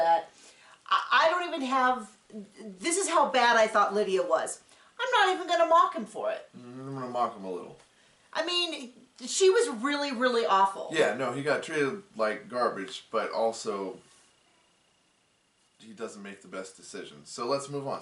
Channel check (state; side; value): identical; both; correlation 1.00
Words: I don't even have... This is how bad I thought Lydia was. I'm not even going to mock him for it. I'm going to mock him a little. I mean... She was really, really awful. Yeah, no, he got treated like garbage, but also he doesn't make the best decisions. So let's move on.